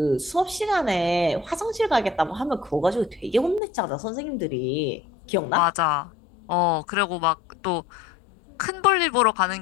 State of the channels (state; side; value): drops out; right; at 3.6 s